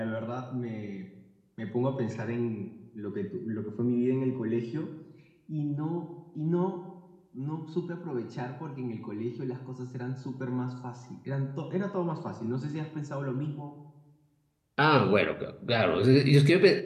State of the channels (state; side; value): identical; both; correlation 1.00